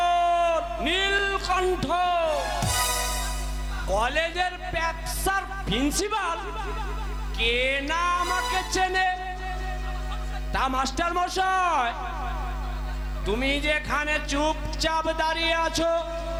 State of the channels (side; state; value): both; identical; correlation 1.00